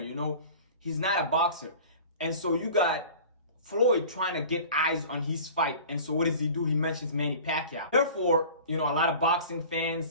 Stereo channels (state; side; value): inverted; both; correlation -0.41